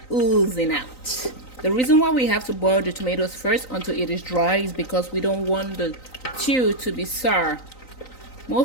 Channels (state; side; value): late; right; 3.9 ms